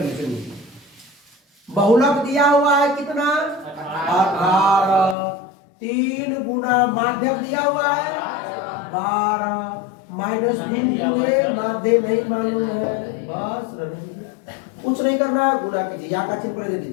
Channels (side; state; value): right; drops out; at 5.2 s